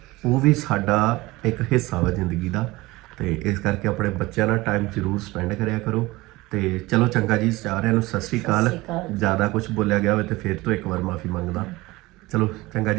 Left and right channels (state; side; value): quieter; left; 20.4 dB